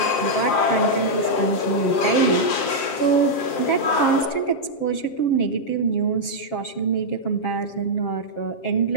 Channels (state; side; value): late; right; 7.5 ms